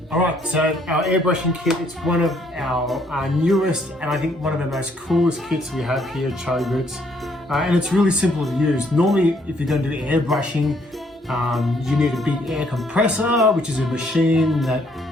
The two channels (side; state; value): both; normal; correlation 0.68